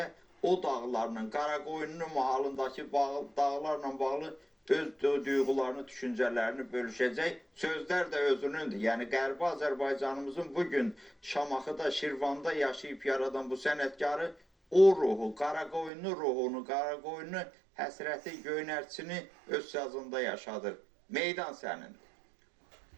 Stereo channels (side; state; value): left; drops out; at 15.9 s